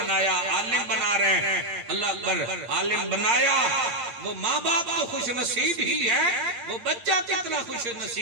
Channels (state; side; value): late; left; 9.1 ms